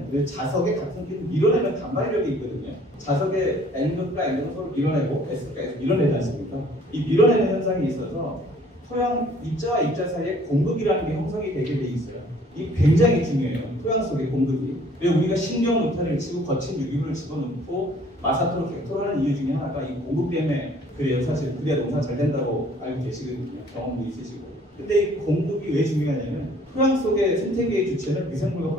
자석의 같은 끼리 밀어내는 반발력이 있거든요. 자석의 N극과 N극을 서로 밀어내고 S극과 S를 밀어내지 않습니까? 이 밀어내는 현상이 있어서 토양 입자와 입자 사이에 공극이라는 게 형성이 되게 돼 있어요. 이 굉장히 중요해요. 토양 속의 공극이. 왜 우리가 신경 노탄을 치고 거친 유기물을 집어넣고 마사토로 객토를 하는 이유 중에 하나가 이 공극 때문에 그래요. 사실 그래야 농사 잘 된다고 알고 계시거든요. 경험도 있으시고. 근데 이 공극이 왜 중요하냐면 토양 속의 생태계의 주체는 미생물과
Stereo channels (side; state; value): both; normal; correlation 0.56